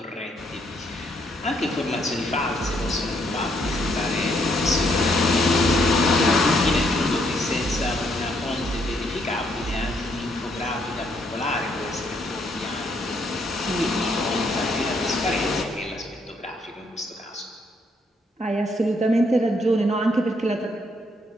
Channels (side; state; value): both; normal; correlation 0.72